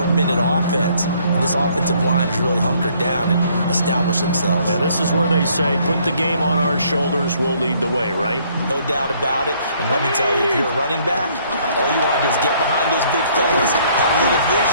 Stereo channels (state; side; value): inverted; both; correlation -0.64